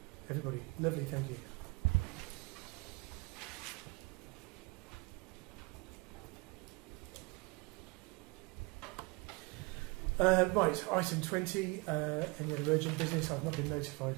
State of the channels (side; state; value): left; quieter; 27.3 dB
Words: Everybody, lovely, thank you. Right, item 20, any other urgent business? I've not been notified